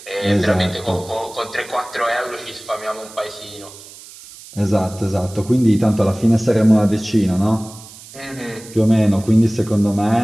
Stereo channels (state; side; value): noise; right; hiss, 18 dB below the sound